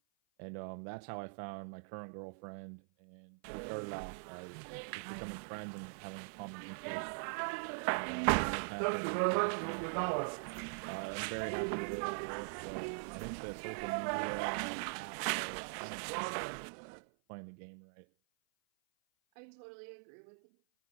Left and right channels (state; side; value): silent; left; 50 dB below the other